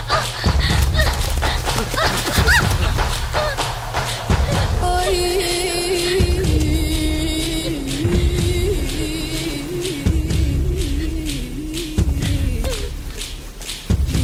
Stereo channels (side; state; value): both; identical; correlation 1.00